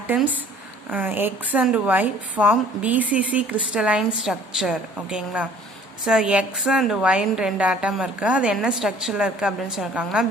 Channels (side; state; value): both; normal; correlation 0.53